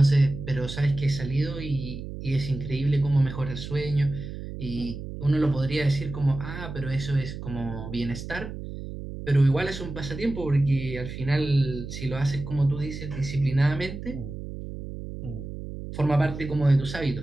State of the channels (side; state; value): right; noise; hum, 9 dB below the sound